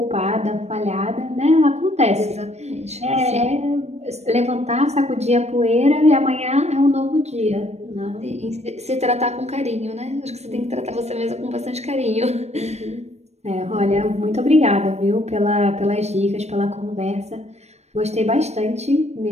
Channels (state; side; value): late; left; 0.31 ms